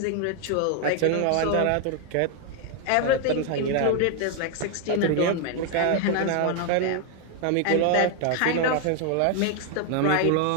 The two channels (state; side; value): different; both; correlation 0.01